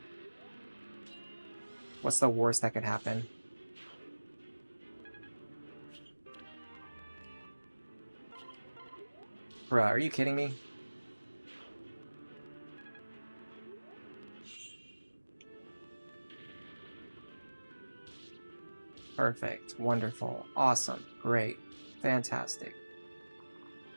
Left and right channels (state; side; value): inverted; both; correlation -1.00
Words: what's the worst that could happen? Bruh, are you kidding me? Perfect. Wonderful. Awesome. Great. Fantastic.